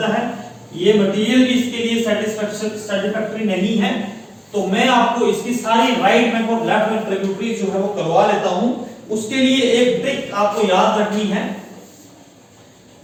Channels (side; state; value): both; identical; correlation 1.00